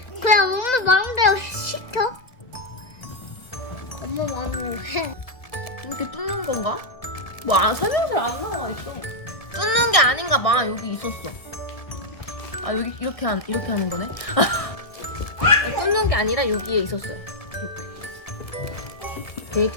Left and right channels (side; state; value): right; late; 1.8 ms